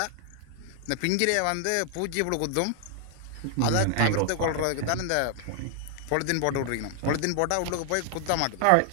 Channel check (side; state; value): both; different; correlation 0.00